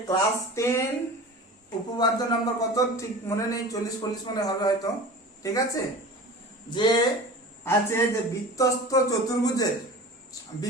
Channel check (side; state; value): both; normal; correlation 0.36